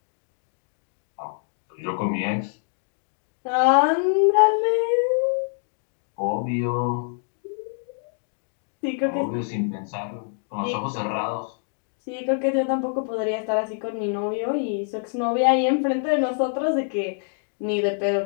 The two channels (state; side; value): silent; right; 61 dB below the other